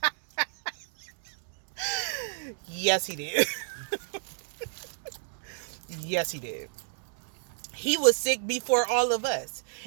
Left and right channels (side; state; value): left; silent; digital silence